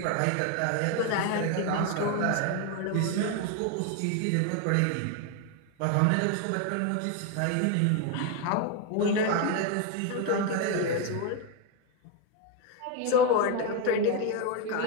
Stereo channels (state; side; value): different; both; correlation 0.01